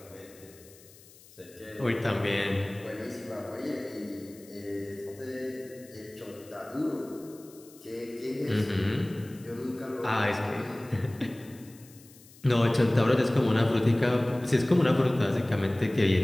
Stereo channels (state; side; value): noise; left; hiss, 23 dB below the sound